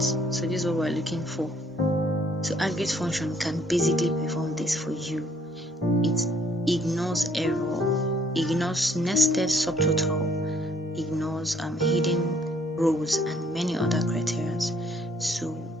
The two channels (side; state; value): both; normal; correlation 0.63